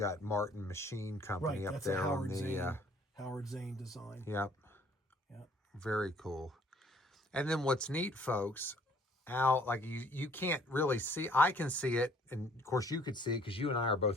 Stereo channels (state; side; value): normal; both; correlation 0.59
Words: Martin Machine Company up That's there a on Howard the. Zane. Howard Zane design. Yep. Yep. Very cool. And then what's neat, folks, Al, like you can't really see. I can see it, and of course you could see it because you and I are